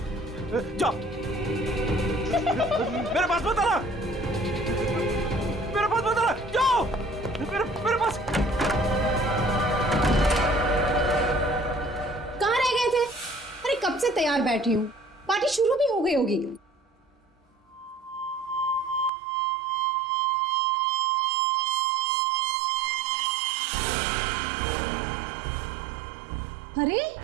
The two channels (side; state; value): left; drops out; at 19.1 s